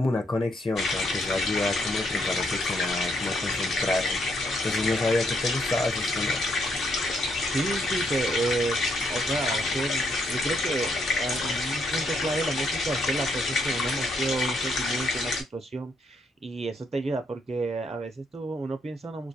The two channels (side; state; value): both; normal; correlation 0.73